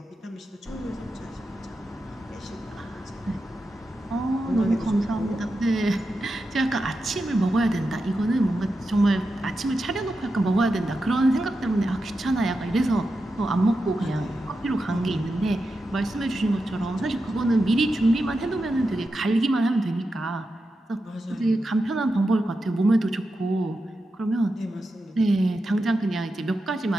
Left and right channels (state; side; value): normal; both; correlation 0.89